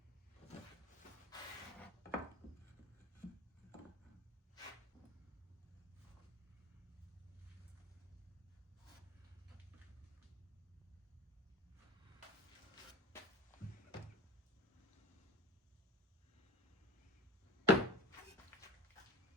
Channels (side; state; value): both; normal; correlation 0.34